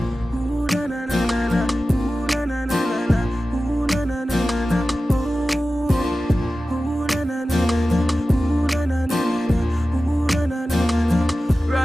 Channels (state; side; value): normal; both; correlation 0.95